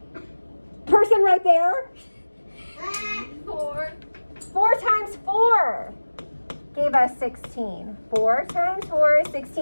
Person right there. 4. 4 times 4 gave us 16. 4 times 4 is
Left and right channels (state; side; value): inverted; both; correlation -1.00